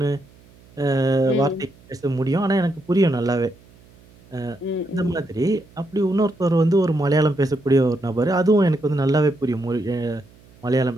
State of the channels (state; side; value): noise; right; hum, 27 dB below the sound